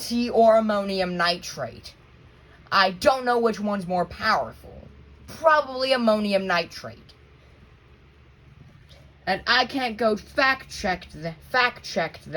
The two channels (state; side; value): identical; both; correlation 1.00